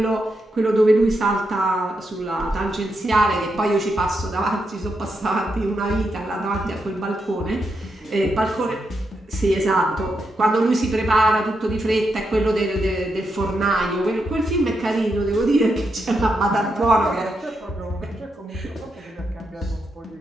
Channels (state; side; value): normal; both; correlation 0.83